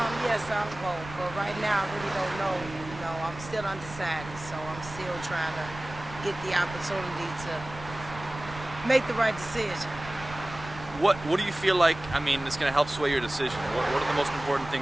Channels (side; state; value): right; noise; rumble, 14 dB below the sound